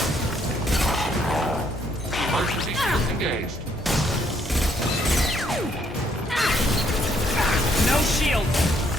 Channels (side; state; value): both; normal; correlation 0.70